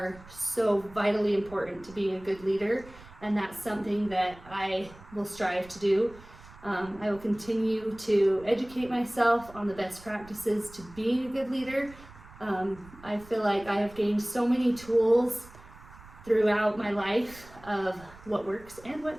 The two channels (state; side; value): noise; right; rumble, 21 dB below the sound